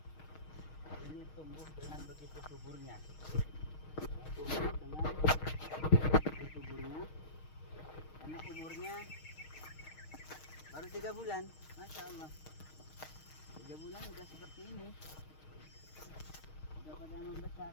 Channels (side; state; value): right; late; 6.4 ms